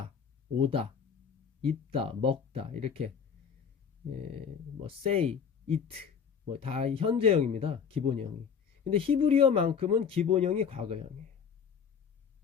오다, 입다, 먹다 이렇게 뭐 say, eat 뭐 다 현재형입니다. 기본형이. 근데 히브리어만큼은 기본형이 과거형이에요.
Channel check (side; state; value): right; quieter; 6.8 dB